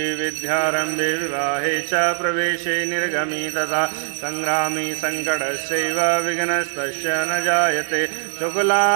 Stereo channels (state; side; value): silent; left; digital silence